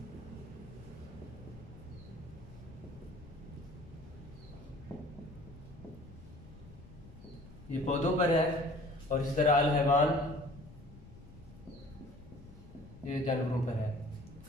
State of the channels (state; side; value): noise; left; rumble, 18 dB below the sound